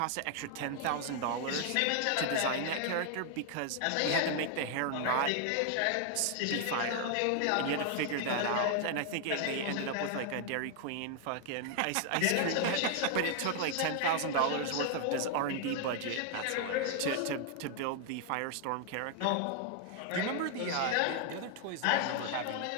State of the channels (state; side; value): different; both; correlation 0.00